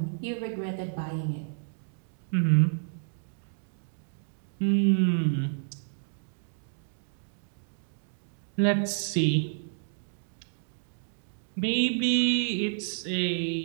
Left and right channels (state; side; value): silent; left; digital silence